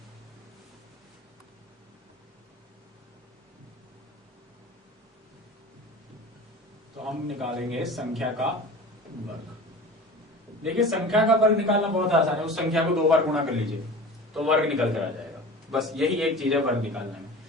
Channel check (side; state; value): both; normal; correlation 0.36